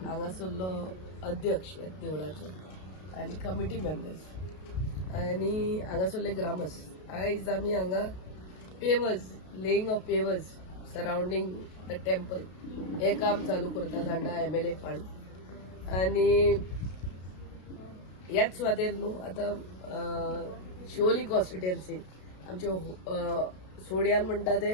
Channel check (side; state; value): right; late; 32 ms